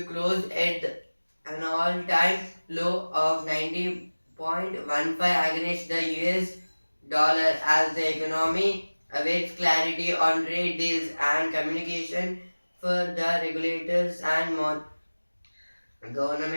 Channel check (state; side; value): inverted; both; correlation -1.00